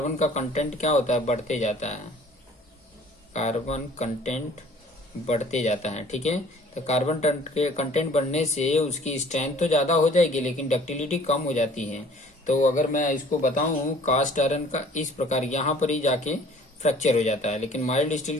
का कंटेंट क्या होता है? बढ़ते जाता है, कार्बन कंटेंट बढ़ते जाता है। ठीक है, तो कार्बन कंटेंट बढ़ने से उसकी स्ट्रेंथ तो ज़्यादा हो जाएगी लेकिन डक्टिलिटी कम हो जाती है। तो अगर मैं इसको बताऊँ, कास्ट आयरन का इस प्रकार यहाँ पर ही जाके फ्रैक्चर हो जाता है, लेकिन माइल्ड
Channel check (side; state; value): both; normal; correlation 0.52